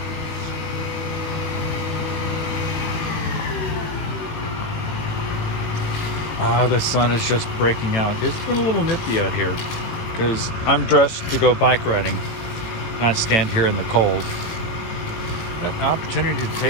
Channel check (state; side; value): late; right; 18 ms